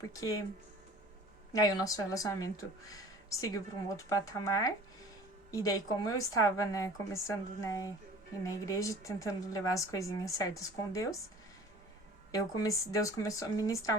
aí o nosso relacionamento seguiu para um outro patamar. E daí como eu estava, né, começando, né, ir na igreja, tentando levar as coisinhas certas com Deus, Deus começou a ministrar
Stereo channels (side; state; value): both; normal; correlation 0.45